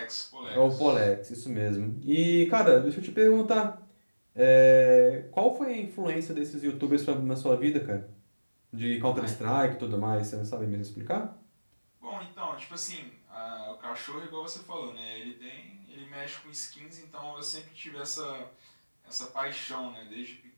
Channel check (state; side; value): inverted; both; correlation -1.00